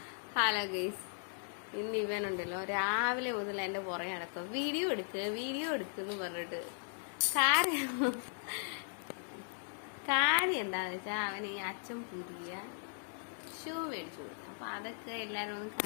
Hello guys, ഇന്ന് ഇവനുണ്ടല്ലോ രാവിലെ മുതൽ എന്റെ പുറകെ നടക്കുക. വീഡിയോ എടുക്കുന്നു പറഞ്ഞിട്ട് കാര്യം എന്താന്ന് വെച്ചാൽ അവൻ ഈ അച്ഛൻ പുതിയ ഷൂ മേടിച്ചു കൊടുത്തു. അപ്പൊ അതൊക്കെ എല്ലാരും ഒന്ന്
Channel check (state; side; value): silent; right; digital silence